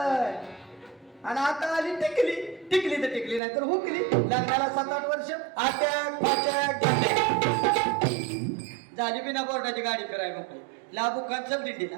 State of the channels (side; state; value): left; drops out; at 3.4 s